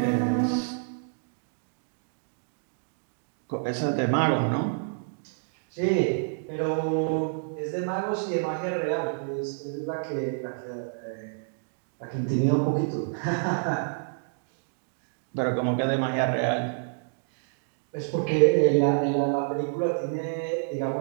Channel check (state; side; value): silent; left; digital silence